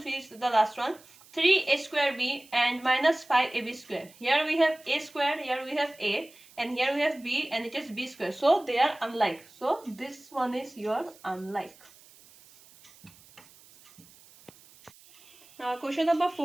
is the last one. 3a square b and minus 5ab square. Here we have a square, here we have a, and here we have b, and it is b square. So they are unlike. So this one is your unlike. Now question number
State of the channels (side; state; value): right; noise; hiss, 25 dB below the sound